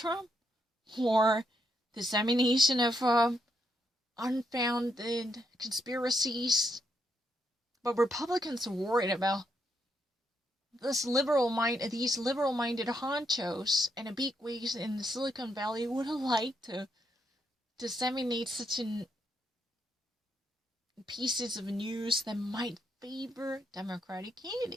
or dissemination of unfounded conspiracies. But Republicans are worried about these liberal-minded honchos and the bigwigs in the Silicon Valley would like to disseminate such pieces of news that might favor Democratic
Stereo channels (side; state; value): both; normal; correlation 0.78